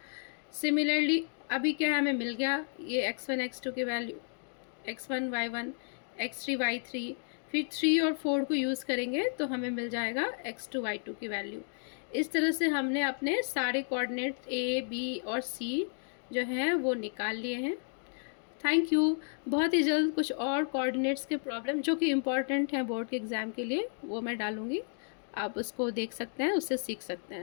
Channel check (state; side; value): silent; right; 56 dB below the other